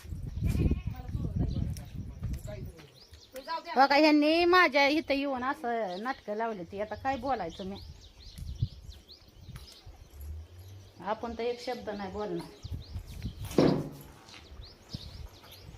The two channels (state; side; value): identical; both; correlation 1.00